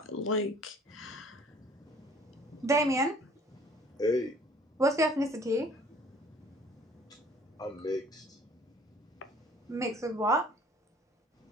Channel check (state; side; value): normal; both; correlation 0.54